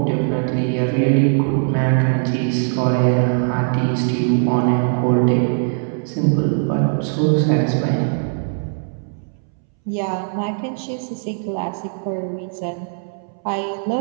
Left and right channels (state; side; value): silent; left; 64 dB below the other